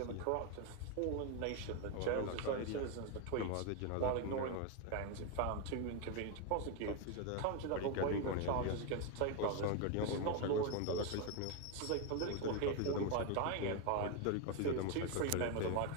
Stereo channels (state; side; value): different; both; correlation 0.02